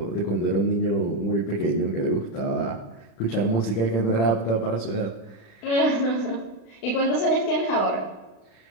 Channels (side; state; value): right; late; 36 ms